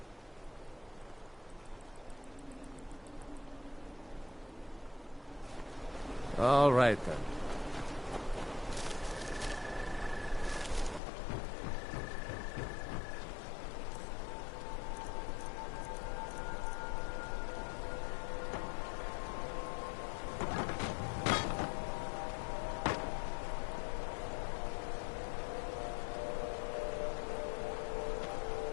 All right, then.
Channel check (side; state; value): right; drops out; at 11.0 s